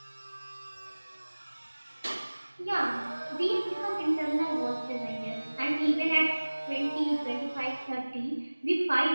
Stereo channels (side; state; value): both; inverted; correlation -1.00